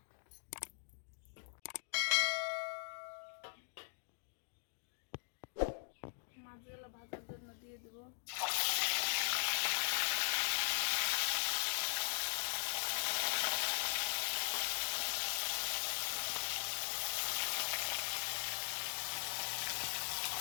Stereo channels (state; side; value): silent; right; digital silence